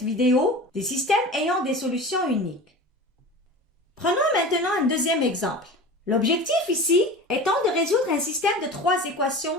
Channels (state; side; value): normal; both; correlation 0.34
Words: vidéo des systèmes ayant des solutions uniques. Prenons maintenant un deuxième exemple. L'objectif ici étant de résoudre un système de 3